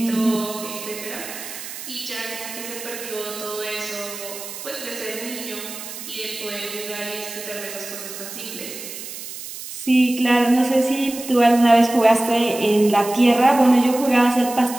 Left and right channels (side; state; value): right; noise; hiss, 11 dB below the sound